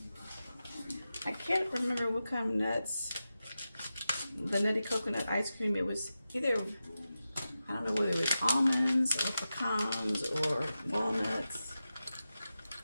I can't remember what kind of nuts. The nutty coconut ice cream, it was either, I don't know whether it was almonds or pecans or walnuts.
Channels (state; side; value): inverted; both; correlation -0.92